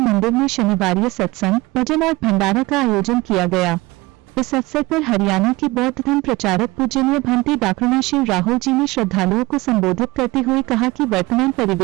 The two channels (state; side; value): quieter; left; 21.2 dB